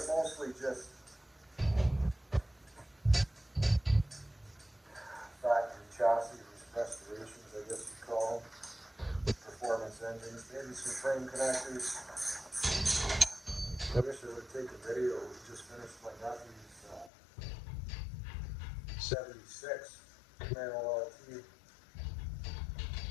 mostly just factory chassis restorations, I guess you call them. Performance engines, maybe some frame connectors. I wish I would take a video. We just finished my nephew's 76 Camaro LT.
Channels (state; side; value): drops out; right; at 17.1 s